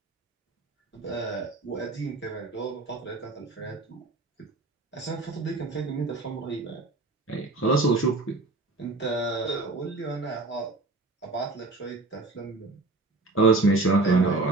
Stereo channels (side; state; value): left; quieter; 3.2 dB